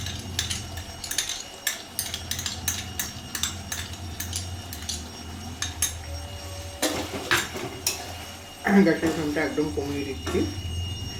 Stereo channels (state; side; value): identical; both; correlation 1.00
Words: গ্যাসের ফ্লেমটা একদম কমিয়ে দিচ্ছি।